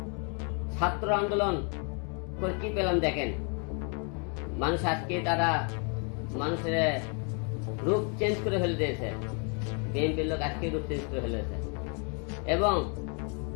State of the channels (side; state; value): right; quieter; 37.9 dB